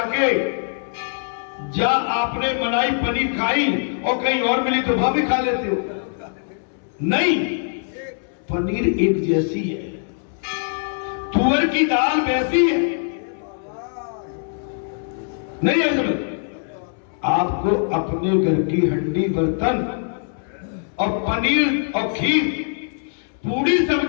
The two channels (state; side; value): silent; right; 64 dB below the other